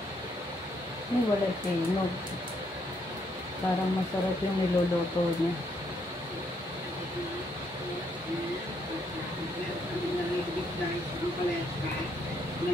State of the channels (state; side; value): normal; both; correlation 0.73